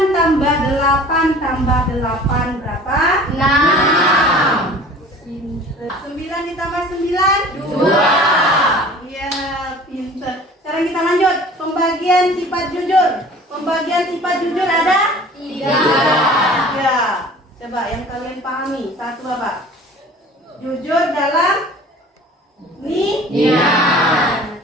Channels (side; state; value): both; normal; correlation 0.45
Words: tambah 8 tambah 8 berapa? 6. 9 ditambah 9? 2. Iya, pintar. Sekarang kita lanjut pembagian sifat jujur. Pembagian sifat jujur ada 3. Coba yang kalian pahami. Satu apa? Jujur dalam niat.